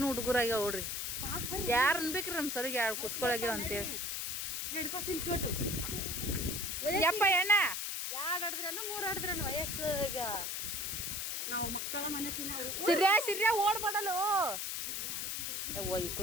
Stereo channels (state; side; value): noise; left; hiss, 2 dB below the sound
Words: ಹುಡುಗರಾಗ್ಯಾವ ನೋಡ್ರಿ. ಯಾರು ಅನ್ಬೇಕ್ರಿ ನಮ್ಮ ಸರಿಗೆ 2 ಕುಸ್ಕೊಳಗ್ಯಾವ ಅಂತೇಳಿ. ಯಪ್ಪ ಎಣ್ಣ 2 ಆಡಿದ್ರೇನು 3 ಆಡಿದ್ರೇನು ವಯಸ್ಸಾಗ ನಾವು ಮಕ್ಕಳ ಮನಸ್ಸಿನ ಸಿರ್ಯಾ ಓಡ್ಬಾಡಲು. ಯವ್ವ